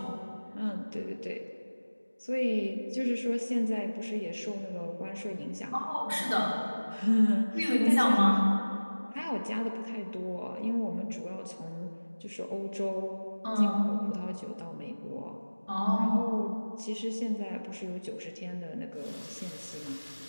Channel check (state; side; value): inverted; both; correlation -1.00